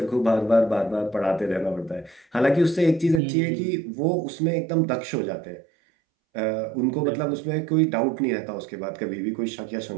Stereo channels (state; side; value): drops out; left; at 3.2 s